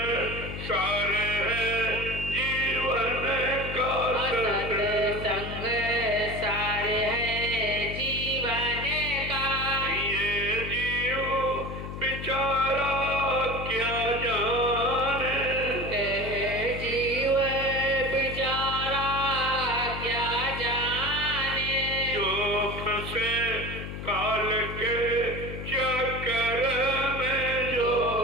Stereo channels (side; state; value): left; noise; hum, 8 dB below the sound